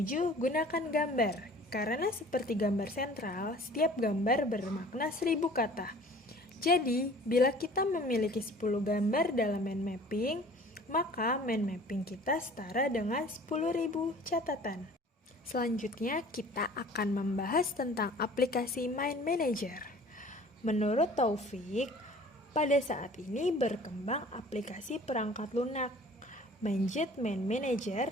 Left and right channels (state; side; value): normal; both; correlation 0.48